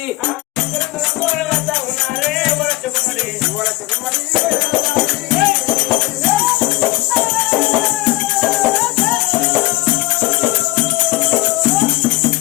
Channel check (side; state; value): right; quieter; 19.6 dB